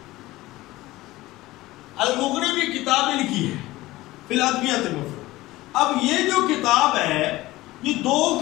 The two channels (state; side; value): quieter; right; 18.2 dB